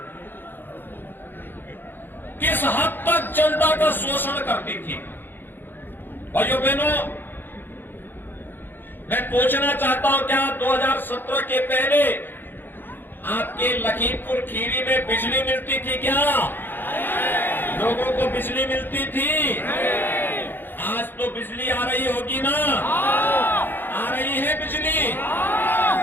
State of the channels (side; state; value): right; late; 0.096 ms